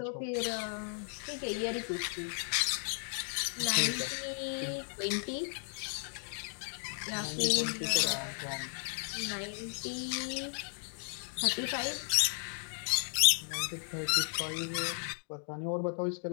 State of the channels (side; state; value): right; silent; 55 dB below the other